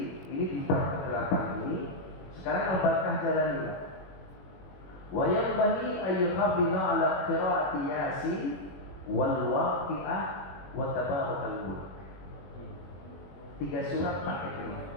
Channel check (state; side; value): late; right; 21 ms